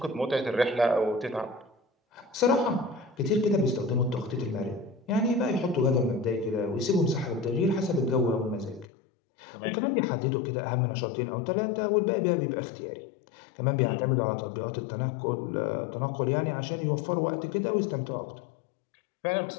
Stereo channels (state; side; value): drops out; right; at 8.8 s